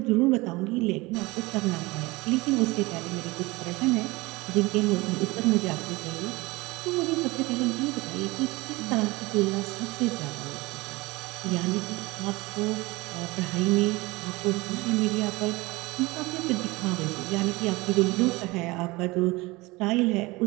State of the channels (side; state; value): left; quieter; 22.5 dB